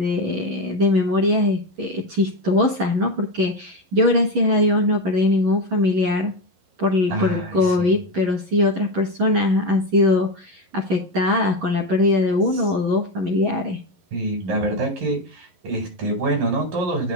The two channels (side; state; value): left; late; 11 ms